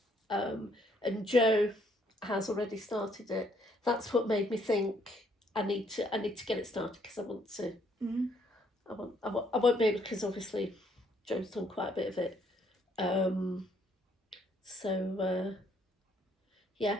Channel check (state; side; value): normal; both; correlation 0.68